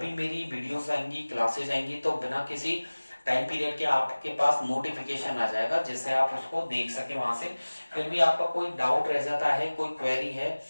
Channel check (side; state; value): both; inverted; correlation -1.00